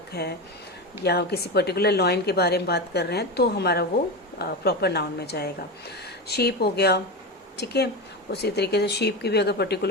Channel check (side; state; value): both; normal; correlation 0.19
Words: है। या हम किसी पर्टिकुलर लॉयन के बारे में बात कर रहे हैं तो हमारा वो प्रॉपर नाउन में जाएगा। शीप हो गया, ठीक है। उसी तरीके से शीप की भी अगर